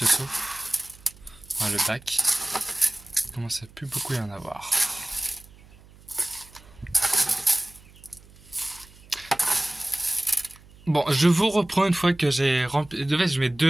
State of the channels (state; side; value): noise; right; hum, 24 dB below the sound